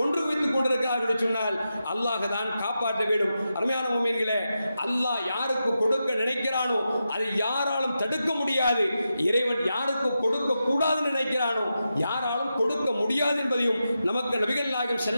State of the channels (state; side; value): inverted; both; correlation -0.89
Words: வைத்துக் கொண்டிருக்கிறார்கள் என்று சொன்னால் அல்லாஹ் தான் காப்பாற்ற வேண்டும். அருமையான முஃமின்களே, அல்லாஹ் யாருக்கு கொடுக்க நினைக்கிறானோ அதை யாராலும் தடுக்க முடியாது. இறைவன் யாருக்கு கொடுக்க கூடாது நினைக்கிறானோ யாராலும் கொடுக்க முடியாது என்பதையும் நமக்கு நபிகள் நாயகம்